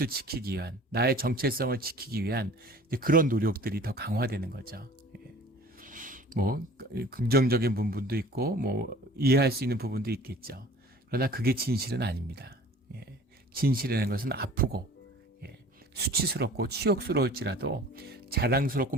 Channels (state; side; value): normal; both; correlation 0.46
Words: 지키기 위한, 나의 정체성을 지키기 위한 그런 노력들이 더 강화되는 거죠. 긍정적인 부분도 있고 이해할 수 있는 부분도 있겠죠. 그러나 그게 진실은 아닙니다. 진실이라는 것은 아프고 수치스럽고 치욕스러울지라도 자랑스럽고